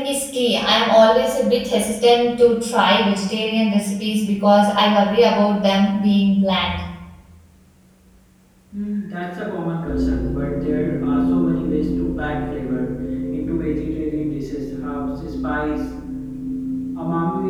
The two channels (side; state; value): both; identical; correlation 1.00